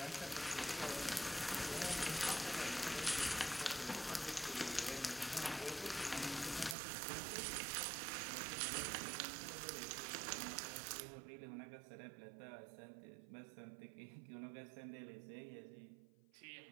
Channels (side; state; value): left; drops out; at 6.8 s